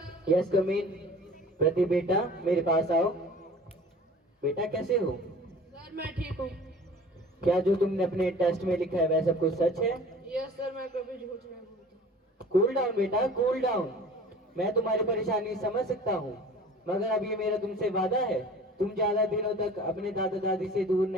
यस कम इन। प्रदीप बेटा मेरे पास आओ। बेटा कैसे हो? सर मैं ठीक हूँ। क्या जो तुमने अपने टेस्ट में लिखा है वह सब कुछ सच है? यस सर, मैं कभी झूठ नहीं बोलता। कूल डाउन बेटा, कूल डाउन। मैं तुम्हारी परेशानी समझ सकता हूँ, मगर अब ये मेरा तुमसे वादा है, तुम ज्यादा दिनों तक अपने दादा दादी से दूर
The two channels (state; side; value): normal; both; correlation 0.44